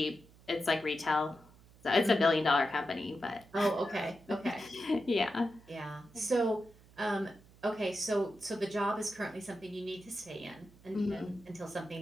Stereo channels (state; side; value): noise; right; hum, 25 dB below the sound